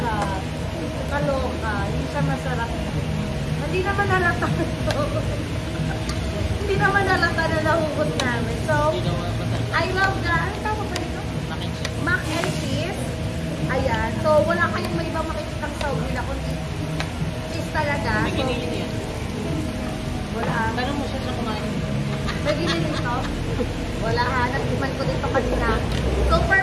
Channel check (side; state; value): both; identical; correlation 1.00